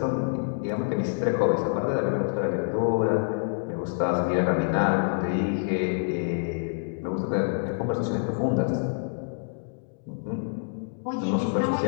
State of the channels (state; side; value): silent; right; digital silence